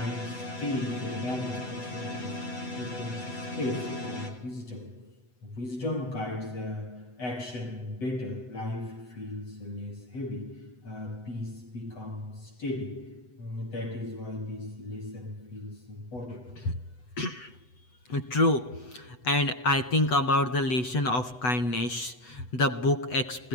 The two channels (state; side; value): late; right; 8.0 ms